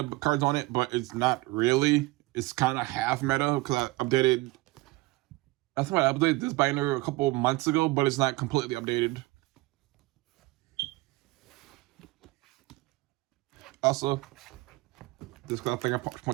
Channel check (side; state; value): left; quieter; 21.3 dB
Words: cards on it, but it's not really. It's kind of half meta because I updated. I think I updated this binder a couple months ago, but it's not completely updated. Also, this card thing I